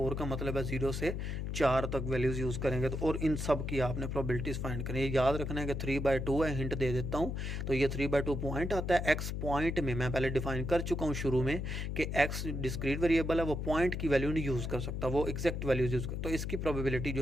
का मतलब है 0 से 4 तक वैल्यूज़ यूज़ करेंगे तो, और इन सब की आपने प्रोबेबिलिटीज़ फाइंड करनी है। याद रखना है कि 3/2 है, हिंट दे देता हूँ, तो ये 3/2 पॉइंट आता है। x पॉइंट में मैं पहले डिफाइन कर चुका हूँ शुरू में कि x डिस्क्रीट वेरिएबल है, वो पॉइंट की वैल्यू नहीं यूज़ कर सकता, वो एग्जैक्ट वैल्यूज़ यूज़ कर, तो इसकी प्रोबेबिलिटी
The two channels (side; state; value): left; noise; hum, 3 dB below the sound